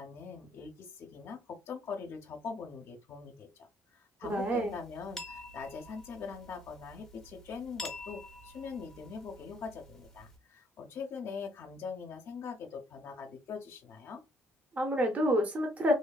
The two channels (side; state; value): both; normal; correlation 0.67